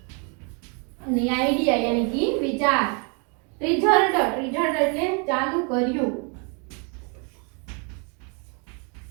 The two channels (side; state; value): left; quieter; 36.0 dB